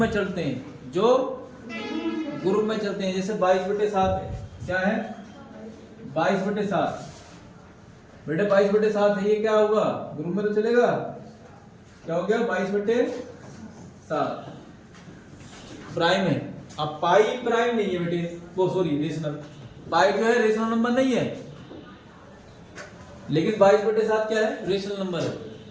चलते हैं, जैसे 22/7 है। क्या है? 22/7 बेटे 22/7 है, ये क्या होगा? ग्रुप में तो चलेगा। क्या हो गया? 22/7 प्राइम है। अब पाई प्राइम नहीं है बेटे, वो सॉरी रेशनल, पाई जो है रेशनल नंबर नहीं है, लेकिन 22/7 क्या है? रेशनल नंबर है,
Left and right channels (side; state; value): both; identical; correlation 1.00